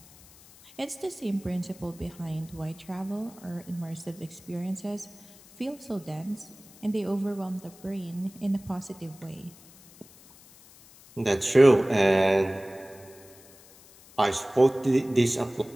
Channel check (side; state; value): left; noise; hiss, 23 dB below the sound